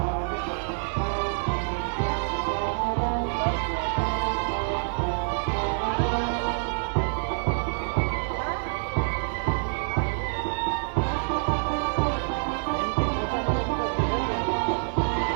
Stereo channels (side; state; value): left; silent; 60 dB below the other